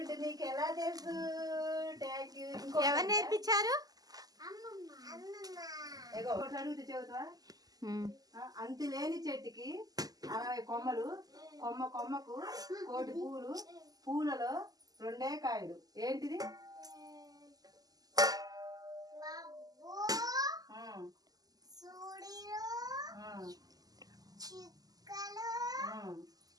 నీకు ఎలా తెలుసు? Thank you. ఎవరు నేర్పించారు? అడుగుతూ చెబుతావా? అంతులేని చెట్టుకి 60 కొమ్మలు, కొమ్మకు 1 పూలు, పూలలో 2 కాయలు. ఏంటిది?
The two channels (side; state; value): left; late; 0.18 ms